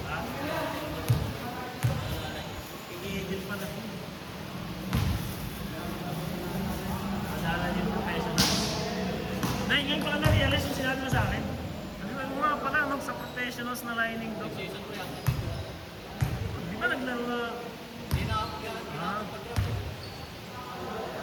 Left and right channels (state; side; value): identical; both; correlation 1.00